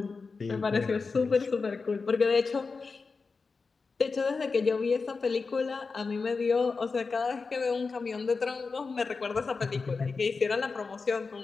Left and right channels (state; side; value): quieter; right; 4.5 dB